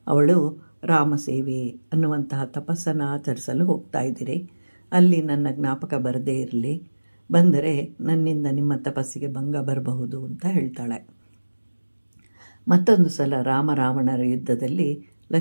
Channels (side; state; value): both; inverted; correlation -1.00